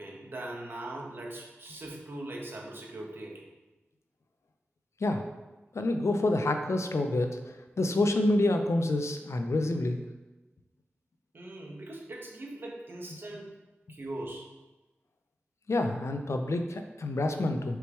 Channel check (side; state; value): both; normal; correlation 0.88